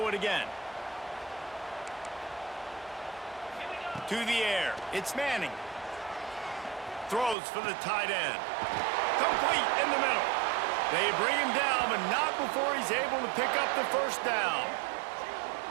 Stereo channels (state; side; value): drops out; left; at 7.4 s